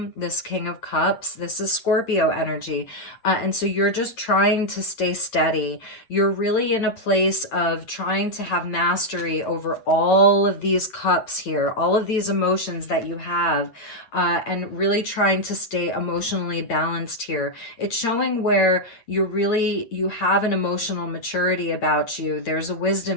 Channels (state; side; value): late; right; 8.7 ms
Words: of cups. This is Scorpio energy. And so you're just trying to stay steady. You're really in a place of trying to have mastery over all of these cups here, all of these emotions that you have. And really trying to stay emotionally balanced here. It's showing where you have an emotional maturity about you. There's a